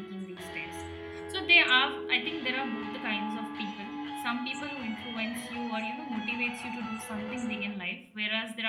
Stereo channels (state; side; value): identical; both; correlation 1.00